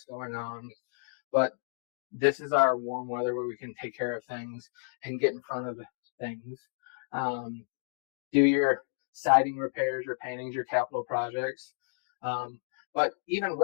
going on, but this is our warm weather where we can take care of things and get in front of things. Do your siding repairs, your paintings, your capital projects. But even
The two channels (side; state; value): right; silent; digital silence